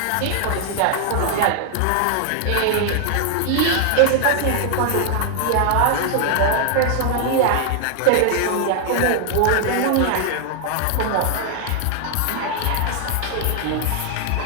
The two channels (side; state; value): both; different; correlation 0.00